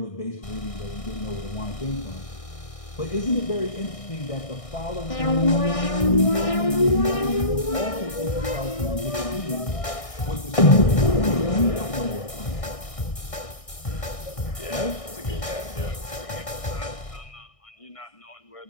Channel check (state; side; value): late; right; 1.6 ms